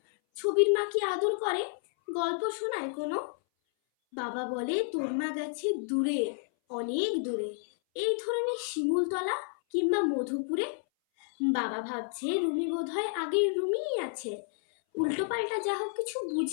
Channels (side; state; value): right; silent; 57 dB below the other